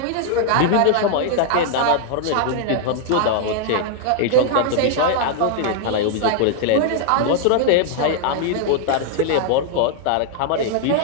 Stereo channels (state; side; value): different; both; correlation 0.00